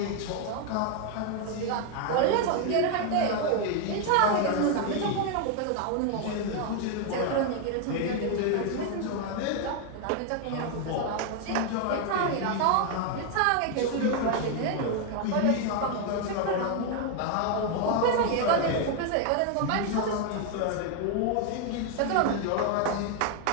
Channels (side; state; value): both; different; correlation 0.00